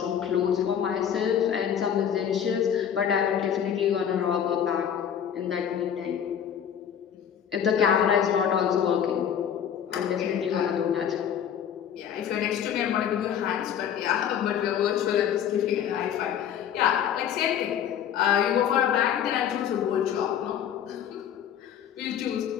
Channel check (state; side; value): quieter; right; 8.9 dB